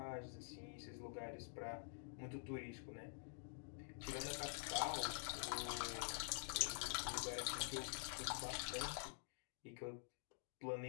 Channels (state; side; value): silent; right; digital silence